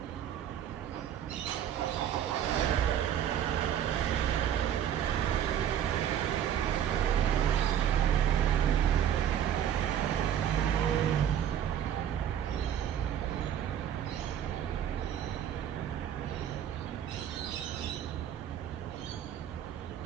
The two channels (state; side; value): quieter; left; 9.8 dB